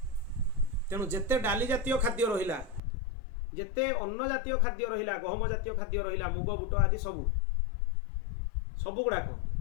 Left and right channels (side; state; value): right; drops out; at 2.8 s